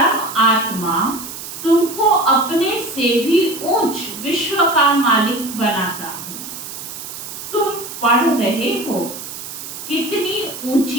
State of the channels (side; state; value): right; noise; hiss, 10 dB below the sound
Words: आत्मा तुमको अपने से भी ऊंच विश्व का मालिक बनाता हूँ। तुम पढ़ रहे हो, कितनी